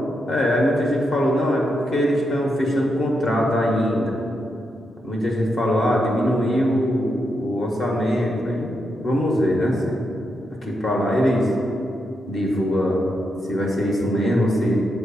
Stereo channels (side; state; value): both; normal; correlation 0.83